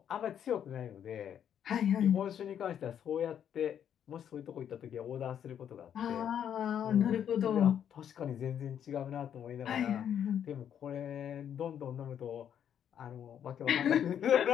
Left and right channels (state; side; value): quieter; right; 9.2 dB